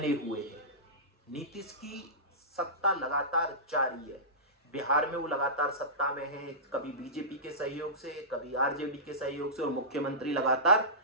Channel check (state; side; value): normal; both; correlation -0.20